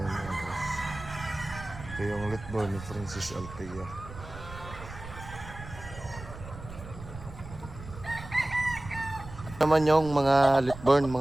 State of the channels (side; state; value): right; noise; rumble, 13 dB below the sound